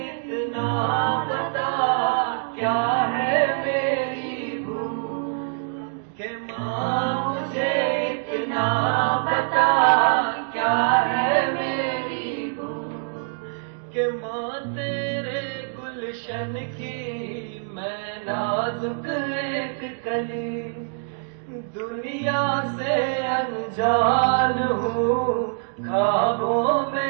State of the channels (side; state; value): left; silent; digital silence